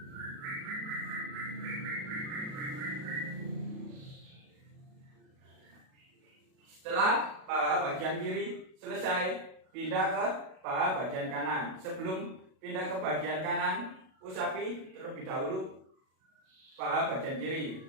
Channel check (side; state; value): left; late; 37 ms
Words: Setelah paha bagian kiri selesai, pindah ke paha bagian kanan. Sebelum pindah ke bagian kanan, usapi terlebih dahulu paha bagian kiri.